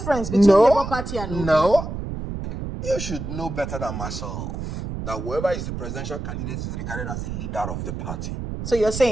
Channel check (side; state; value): right; noise; rumble, 6 dB below the sound